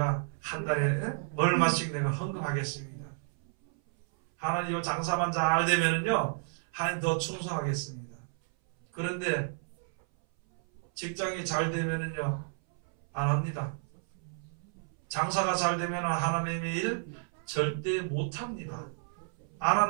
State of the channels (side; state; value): left; silent; 57 dB below the other